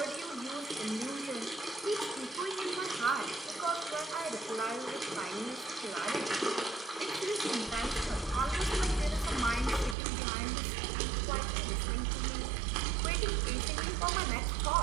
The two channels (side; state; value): left; drops out; at 10.0 s